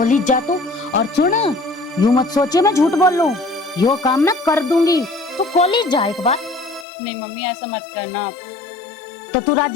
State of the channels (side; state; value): right; drops out; at 6.9 s